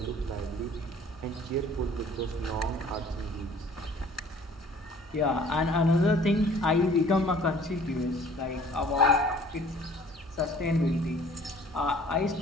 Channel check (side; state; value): both; normal; correlation 0.53